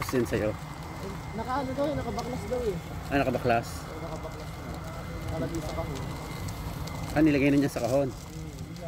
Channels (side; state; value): both; identical; correlation 1.00